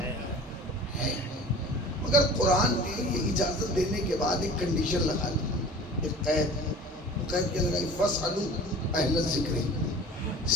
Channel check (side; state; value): both; normal; correlation 0.42